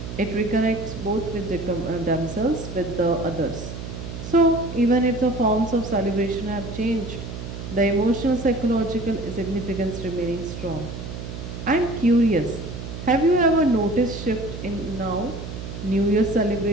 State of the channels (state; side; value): noise; right; hum, 9 dB below the sound